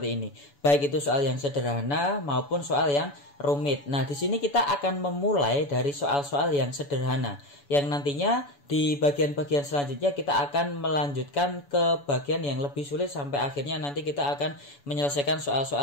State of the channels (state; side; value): late; right; 7.0 ms